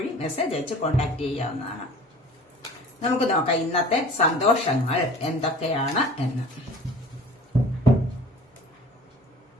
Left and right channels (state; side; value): normal; both; correlation 0.44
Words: മെസ്സേജ് അയച്ച് കോൺടാക്ട് ചെയ്യാവുന്നതാണ്. നമുക്ക് നോക്കാം ഇന്നത്തെ സന്തോഷങ്ങൾ എന്തൊക്കെയാണ് എന്ന്.